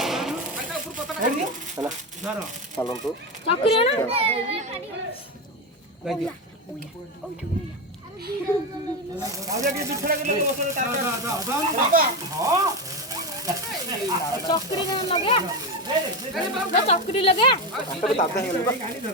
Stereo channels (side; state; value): both; normal; correlation 0.15